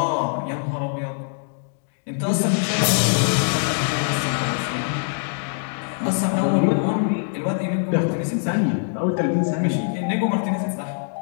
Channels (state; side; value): silent; right; digital silence